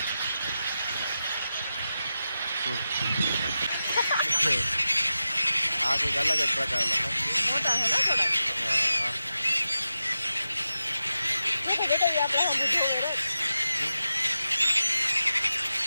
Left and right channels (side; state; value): both; inverted; correlation -0.91